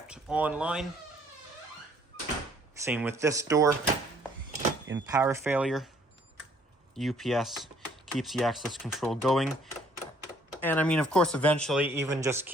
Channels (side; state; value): both; normal; correlation 0.62